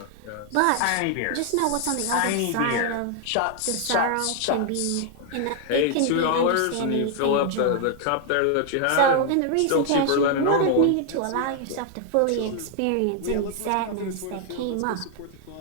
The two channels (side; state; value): both; different; correlation 0.00